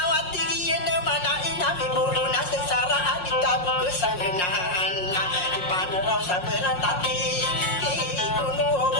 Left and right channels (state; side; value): late; right; 5.6 ms